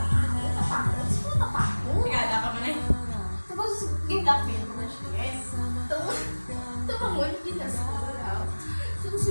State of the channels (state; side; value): inverted; both; correlation -1.00